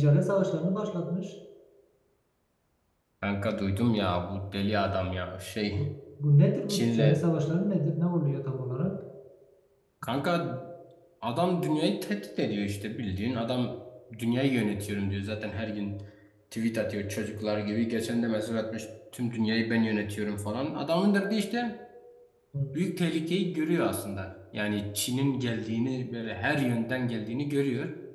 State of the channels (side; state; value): both; identical; correlation 1.00